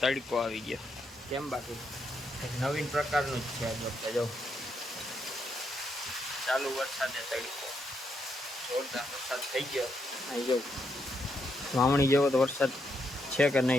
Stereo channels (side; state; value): both; normal; correlation 0.79